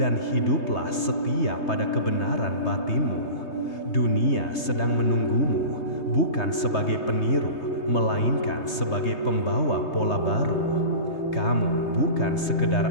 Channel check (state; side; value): late; right; 3.2 ms